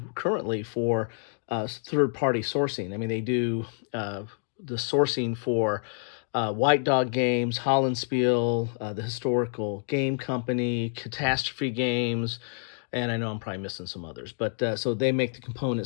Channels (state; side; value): silent; right; 57 dB below the other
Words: currently, for third-party sourcing. I mean, they do the sourcing for White Dog Games, Hollandspiel, the Historical Game Company, Catastrophe Games, and I know I'm probably missing some others. But so they make the